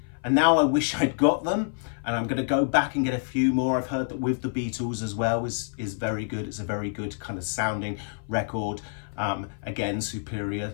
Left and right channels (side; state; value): right; silent; 55 dB below the other